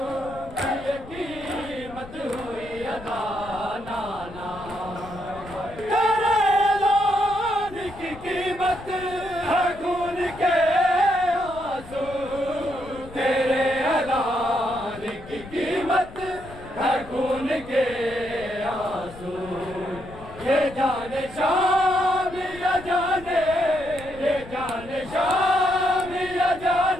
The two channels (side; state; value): left; noise; rumble, 17 dB below the sound